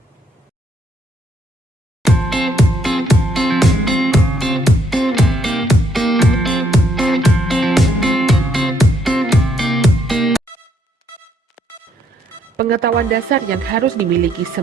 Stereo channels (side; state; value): both; normal; correlation 0.70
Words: Pengetahuan dasar yang harus dimiliki